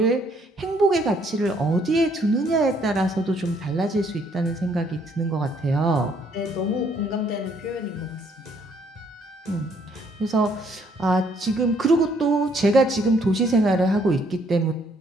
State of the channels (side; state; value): both; normal; correlation 0.67